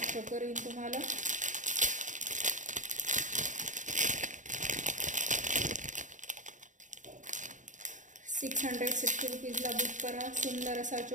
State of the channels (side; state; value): left; late; 0.36 ms